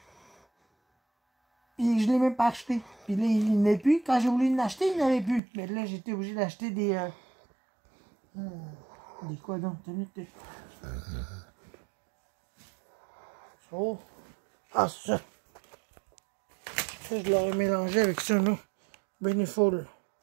Puis je l'ai même pas acheté. Puis là, il n'y en a plus. Quand j'ai voulu l'acheter, il n'y en avait plus. Mais là, j'étais obligé d'acheter des... des quoi donc? Oh. Ah, c'est ça. Ça, je l'aurais mélangé avec ça, là. Beneful.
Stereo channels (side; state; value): left; drops out; at 5.4 s